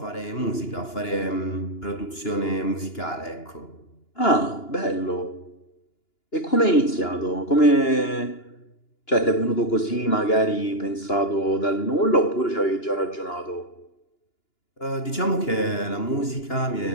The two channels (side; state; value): right; late; 2.9 ms